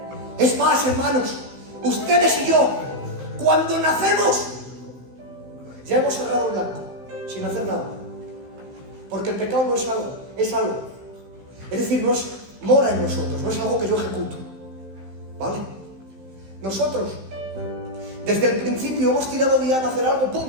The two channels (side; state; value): left; late; 15 ms